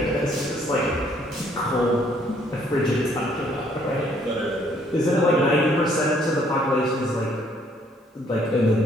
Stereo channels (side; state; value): both; normal; correlation 0.65